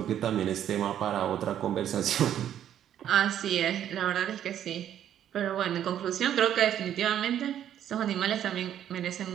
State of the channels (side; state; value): left; quieter; 10.5 dB